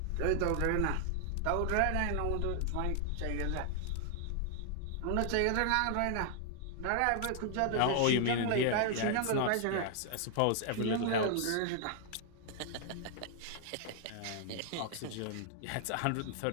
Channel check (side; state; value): both; different; correlation 0.00